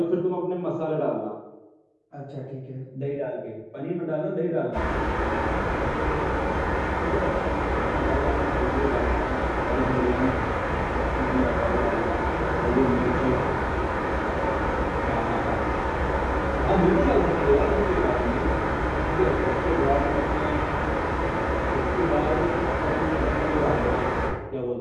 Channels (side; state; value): both; identical; correlation 1.00